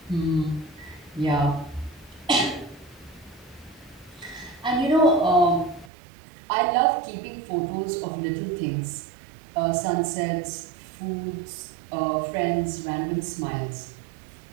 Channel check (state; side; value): drops out; left; at 5.9 s